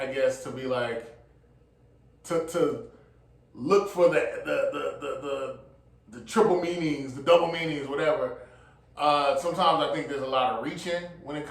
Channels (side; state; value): both; identical; correlation 1.00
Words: guess, to be like to look for the triple meanings, the double meanings, whatever. Sometimes I think there's a lot of reaching when it